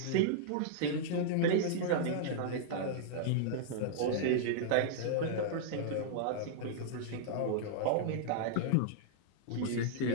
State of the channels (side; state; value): both; different; correlation -0.02